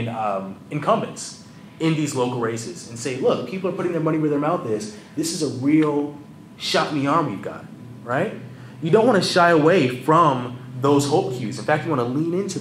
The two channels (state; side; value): identical; both; correlation 1.00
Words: incumbents in these local races, and say, look, people are putting their money where their mouth is. This is a real shot in the arm we've got, right? You don't want to shy away from those hope cues. In fact, you want to lean into